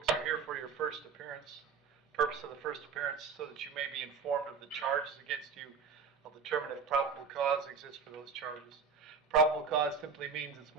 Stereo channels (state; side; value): quieter; left; 5.4 dB